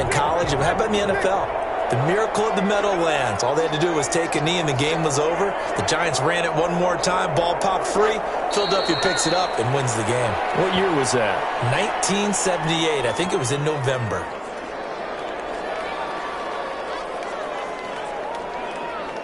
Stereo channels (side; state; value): both; identical; correlation 1.00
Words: college. How about in the NFL? The miracle of the Meadowlands. All they had to do was take a knee and the game was over. The Giants ran it one more time. Ball popped free. Philadelphia picks it up and wins the game. What year was that? 1978. I think it was in November.